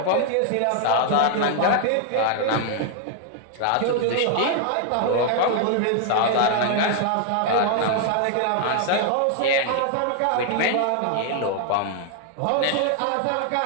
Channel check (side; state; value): both; different; correlation 0.00